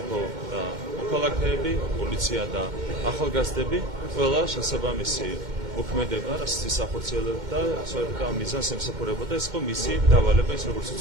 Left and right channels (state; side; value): late; left; 2.1 ms